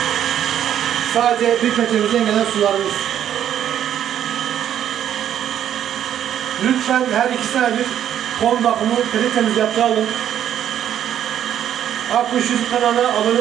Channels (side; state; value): left; quieter; 10.3 dB